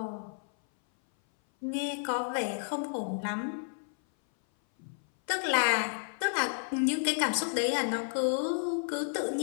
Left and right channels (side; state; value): right; silent; 57 dB below the other